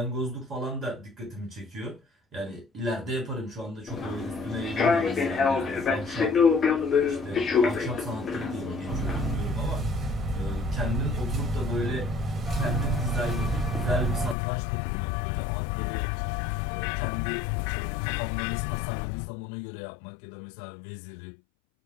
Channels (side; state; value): right; drops out; at 14.4 s